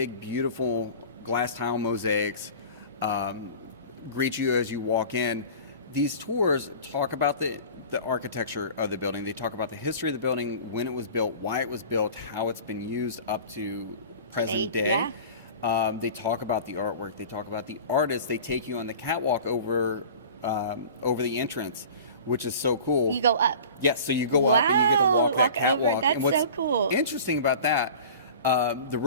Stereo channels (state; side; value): inverted; both; correlation -0.40